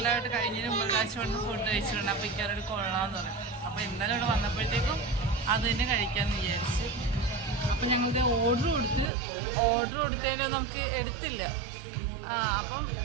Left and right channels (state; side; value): drops out; left; at 9.1 s